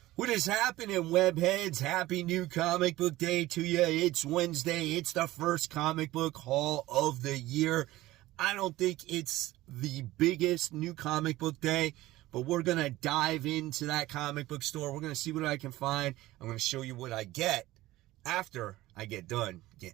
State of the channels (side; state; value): left; quieter; 17.1 dB